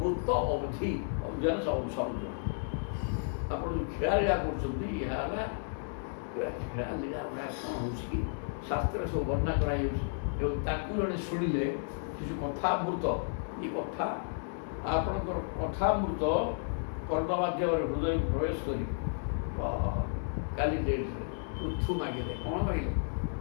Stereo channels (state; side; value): silent; right; digital silence